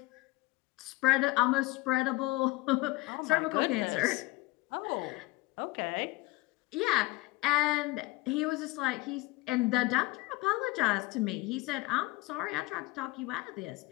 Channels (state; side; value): quieter; right; 21.3 dB